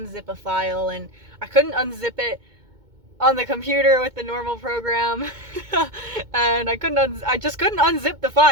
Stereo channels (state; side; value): late; left; 2.2 ms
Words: a file and I couldn't unzip it on the computer with the normal program. And I just couldn't unzip the